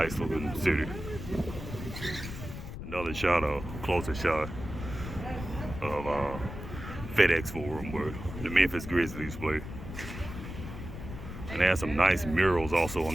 looking city. Another shot, a closer shot of FedEx Forum where the Memphis Grizzlies play. And they have some nice murals also on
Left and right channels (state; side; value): noise; left; rumble, 9 dB below the sound